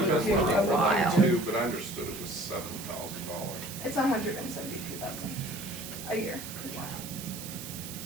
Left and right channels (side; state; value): right; noise; hiss, 10 dB below the sound